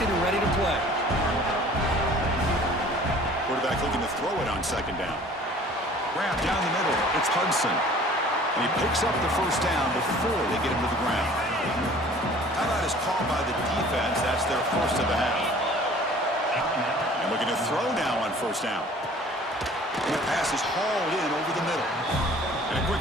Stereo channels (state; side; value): normal; both; correlation 0.49